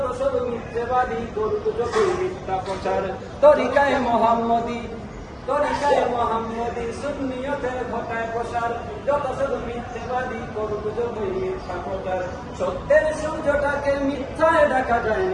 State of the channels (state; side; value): identical; both; correlation 1.00